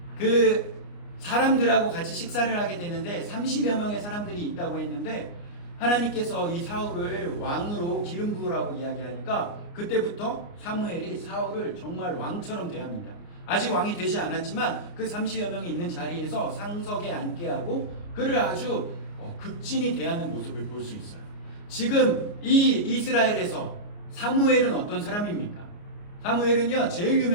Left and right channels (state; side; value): late; right; 29 ms